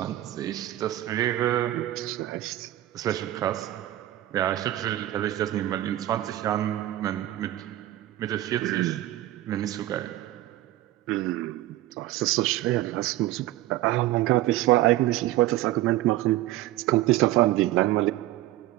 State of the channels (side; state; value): left; quieter; 15.3 dB